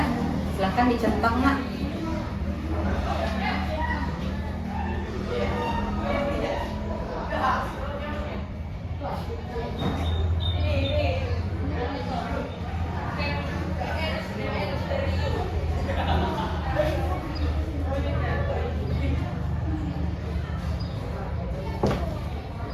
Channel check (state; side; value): identical; both; correlation 1.00